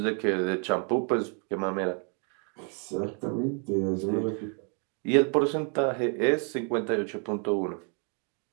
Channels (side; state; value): left; quieter; 38.9 dB